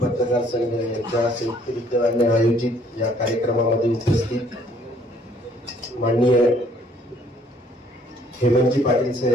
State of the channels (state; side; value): normal; both; correlation 0.62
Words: संघ यांच्या संयुक्त विद्यमाने आयोजित या कार्यक्रमामध्ये उपस्थित माननीय हेमंतजी पाटील